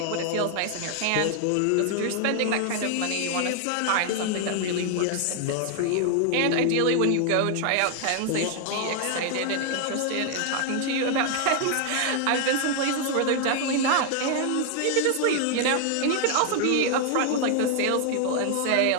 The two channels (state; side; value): different; both; correlation 0.00